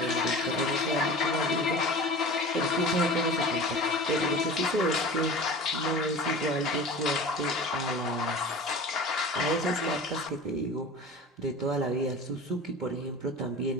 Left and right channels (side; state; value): both; normal; correlation 0.37